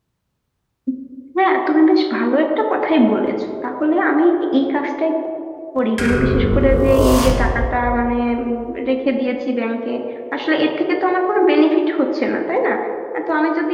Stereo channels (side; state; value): both; identical; correlation 1.00